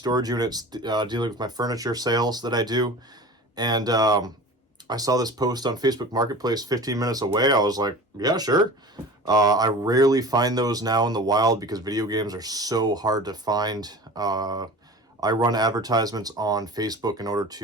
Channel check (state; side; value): normal; both; correlation 0.37